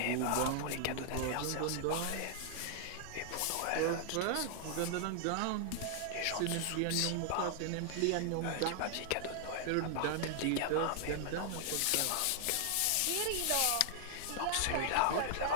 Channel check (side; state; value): both; different; correlation 0.00